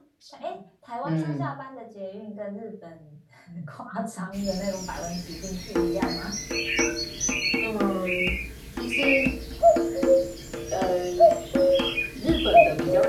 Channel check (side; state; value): both; identical; correlation 1.00